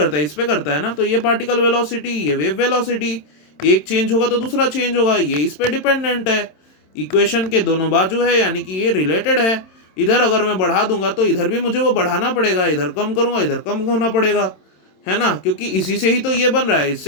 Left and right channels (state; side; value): late; right; 27 ms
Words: है, इस पे करता है ना। तो ये पार्टिकल वेलोसिटी, ये वेव वेलोसिटी, एक चेंज होगा तो दूसरा चेंज होगा, ये इस पे डिपेंडेंट है, इक्वेशन के दोनों बाजू है, यानी कि ये रिलेटेड है। इधर अगर मैं बढ़ा दूंगा तो इधर भी मुझे वो बढ़ाना पड़ेगा, इधर कम करूंगा इधर कम होना पड़ेगा, है ना, क्योंकि इसी से ही तो ये बन रहा है,